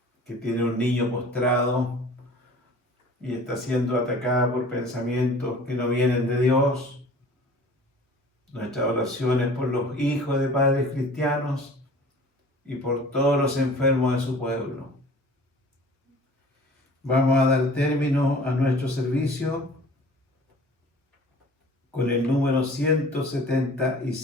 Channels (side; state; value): both; normal; correlation 0.46